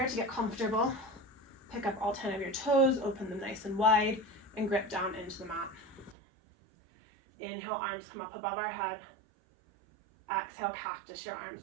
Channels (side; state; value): left; drops out; at 6.2 s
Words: to get comfortable. Pick up all 10 of your toes, open them nice and wide, and grip down into the mat. Inhale, arms come up above our head. Exhale, cactus your